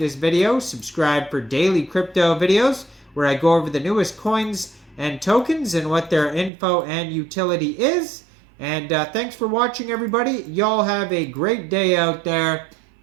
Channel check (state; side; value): drops out; left; at 6.5 s